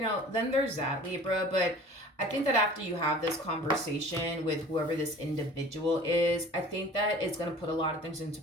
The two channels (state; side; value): normal; both; correlation 0.45